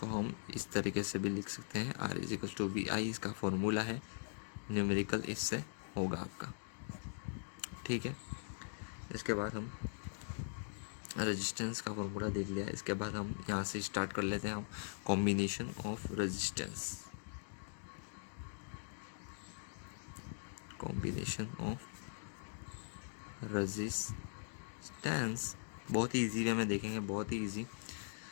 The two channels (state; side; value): silent; right; digital silence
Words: हम इस तरीके से भी लिख सकते हैं, R is equal to V I, इसका फॉर्मूला है, न्यूमेरिकल इससे होगा आपका। ठीक है, इसके बाद हम रेजिस्टेंस का फॉर्मूला देख लिया। इसके बाद हम यहाँ से स्टार्ट कर लेते हैं combination of resistance. Combination of resistance बहुत ही ईजी वे में देखेंगे, बहुत ही ईजी।